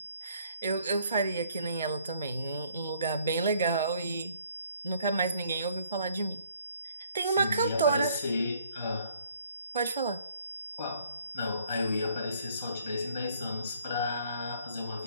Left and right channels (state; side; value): inverted; both; correlation -0.63